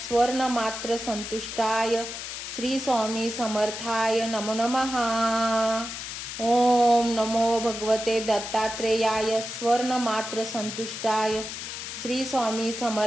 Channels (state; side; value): noise; left; hiss, 7 dB below the sound